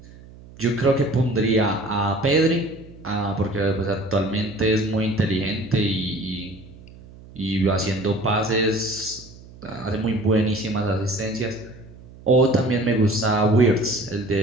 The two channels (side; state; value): right; noise; hum, 20 dB below the sound